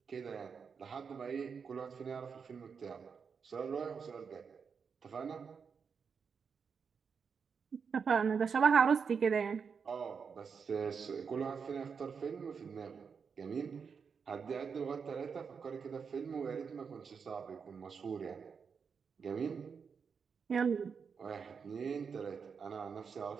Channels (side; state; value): left; quieter; 6.0 dB